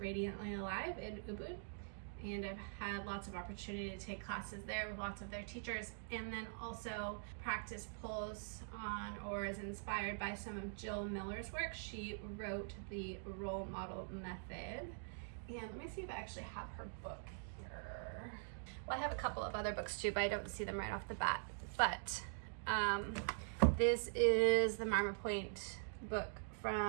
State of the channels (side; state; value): left; silent; digital silence